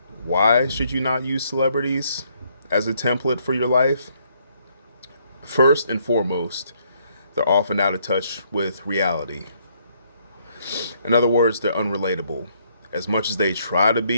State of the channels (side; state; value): both; inverted; correlation -0.70